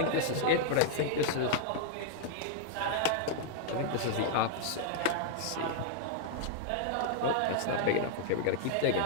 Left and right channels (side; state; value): both; different; correlation -0.01